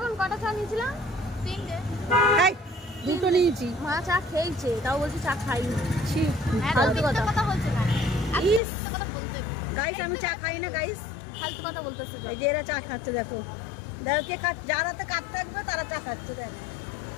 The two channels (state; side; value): drops out; right; at 8.6 s